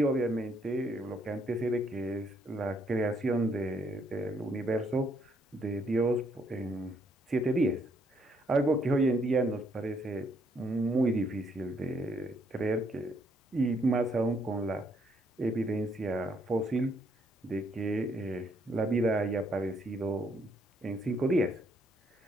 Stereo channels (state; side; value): normal; both; correlation 0.71